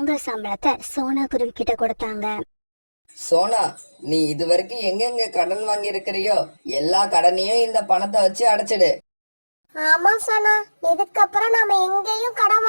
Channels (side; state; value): both; inverted; correlation -1.00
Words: சம்பளத்தை சோனா குருவி கிட்ட கொடுத்தாங்க. சோனா, நீ இதுவரைக்கும் எங்கெங்க கடன் வாங்கி இருக்கிறியோ எல்லா கடனையும் இந்த பணத்தை வச்சு அடைச்சிடு. ஆமா சோனா, இதுக்கப்புறம் நாம எங்கேயும் கடன்